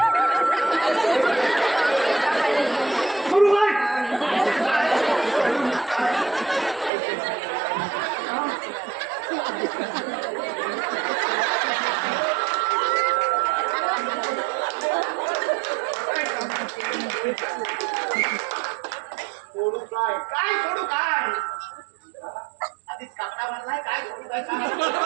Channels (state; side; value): drops out; left; at 6.9 s